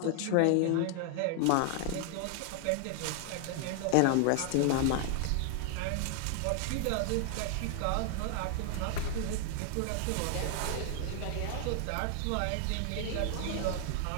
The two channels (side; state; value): both; different; correlation 0.00